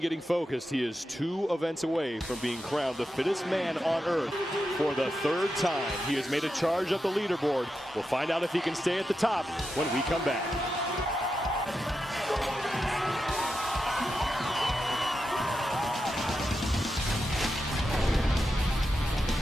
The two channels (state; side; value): normal; both; correlation 0.88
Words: focused. He is 2 events away from being crowned the fittest man on earth for the 3rd time. He has made a charge up the leaderboard. We'll find out if he can stay at the top when we come back.